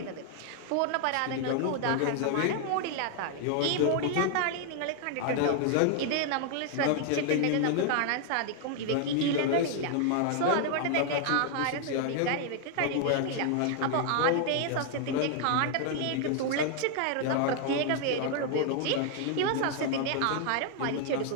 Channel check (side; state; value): both; different; correlation 0.00